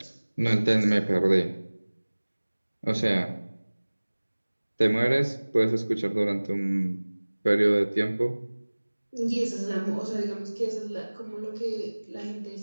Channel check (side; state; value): both; inverted; correlation -1.00